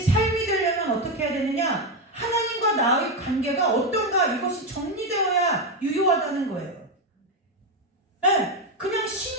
삶이 되려면 어떻게 해야 되느냐? 하나님과 나의 관계가 어떤가 이것이 정리되어야 유효하다는 거예요. 네, 그냥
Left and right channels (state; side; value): normal; both; correlation 0.09